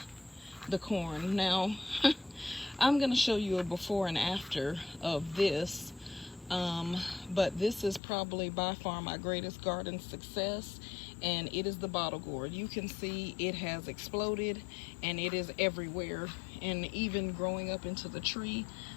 the corn. Now, I'm gonna show you a before and after of this, but this is probably by far my greatest garden success, and it is the bottle gourd. You can see it has exploded, and it is everywhere, and even growing up into the tree,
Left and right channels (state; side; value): drops out; right; at 8.0 s